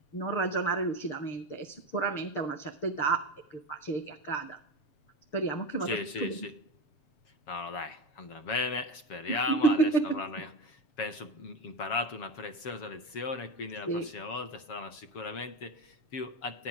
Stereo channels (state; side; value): late; right; 7.2 ms